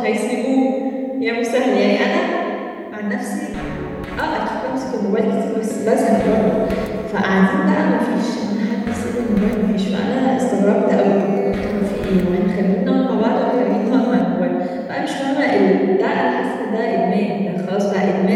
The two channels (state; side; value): identical; both; correlation 1.00